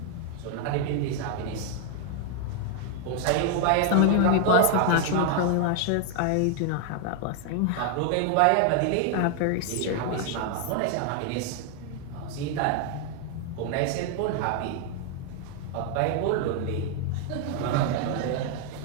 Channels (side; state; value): both; different; correlation 0.00